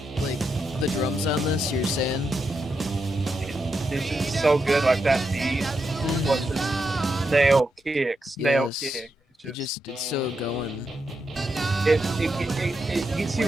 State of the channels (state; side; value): normal; both; correlation 0.84